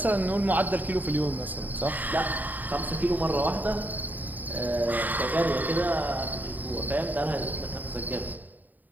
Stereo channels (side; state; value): left; late; 0.085 ms